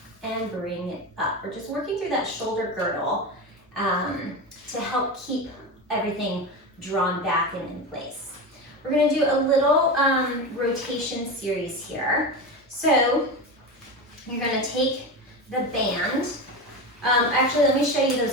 and bring it up. We're just working through that shoulder girdle to help keep everything drawn back and in place. We're gonna do a little rotation series here. So you're gonna take the band. Actually, let me show you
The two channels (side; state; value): both; normal; correlation 0.21